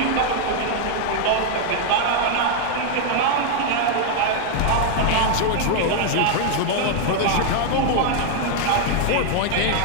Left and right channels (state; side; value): different; both; correlation 0.00